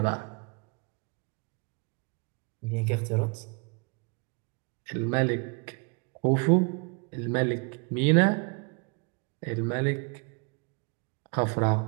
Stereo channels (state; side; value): quieter; left; 34.4 dB